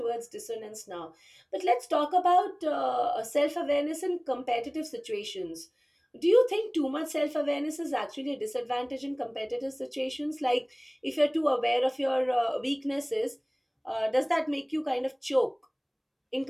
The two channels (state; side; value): identical; both; correlation 1.00